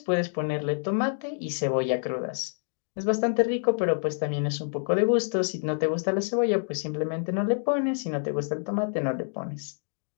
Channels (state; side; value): silent; right; digital silence